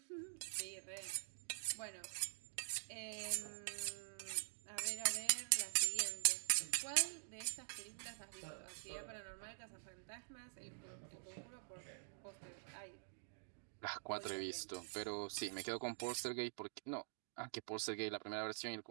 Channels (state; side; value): silent; left; digital silence